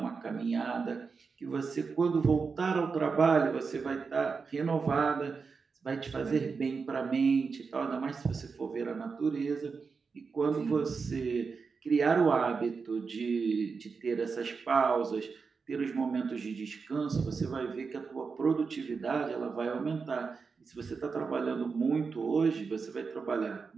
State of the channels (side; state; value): left; quieter; 5.1 dB